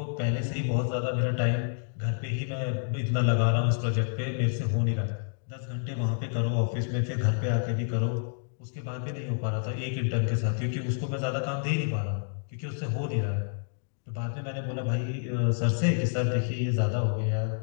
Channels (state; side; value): silent; right; digital silence